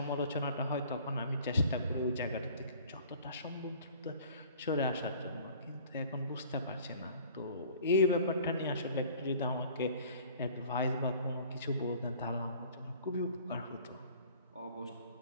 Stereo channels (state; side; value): inverted; both; correlation -0.50